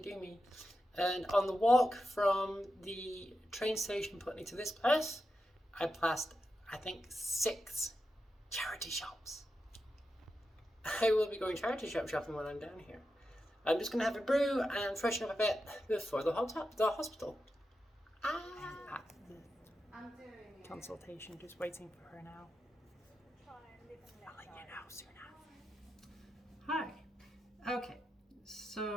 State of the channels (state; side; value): normal; both; correlation 0.89